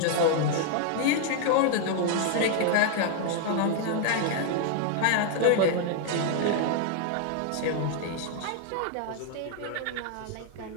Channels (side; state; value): both; different; correlation 0.00